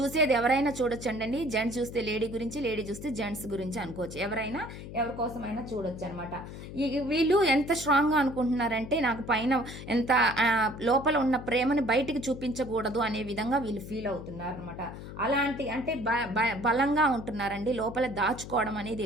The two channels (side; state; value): left; noise; hum, 11 dB below the sound